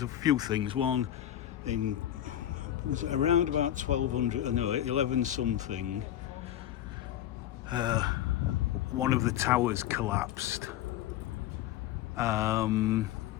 a few things. One, was it around about 1200, no, 11 something, one of the towers collapsed. I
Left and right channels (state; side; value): quieter; right; 11.9 dB